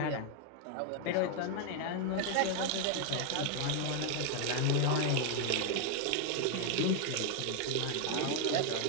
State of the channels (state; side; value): different; both; correlation 0.00